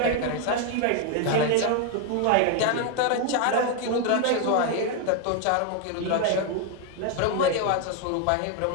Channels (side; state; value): both; different; correlation 0.01